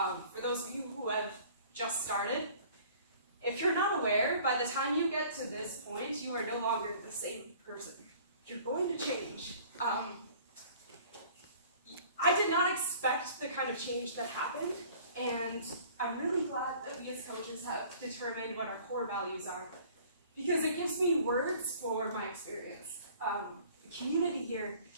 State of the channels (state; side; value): inverted; both; correlation -0.51